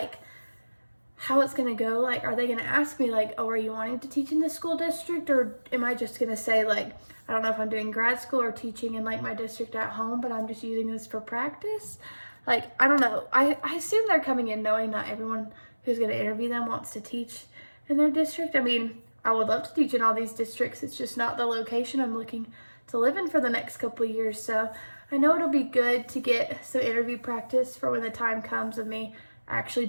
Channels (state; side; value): inverted; both; correlation -1.00